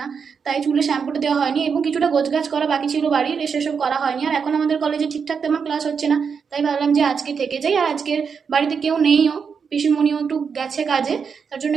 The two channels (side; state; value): left; quieter; 6.1 dB